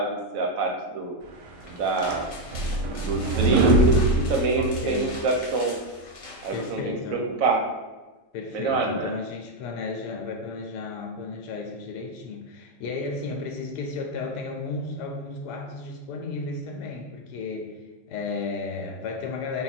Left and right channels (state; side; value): normal; both; correlation 0.03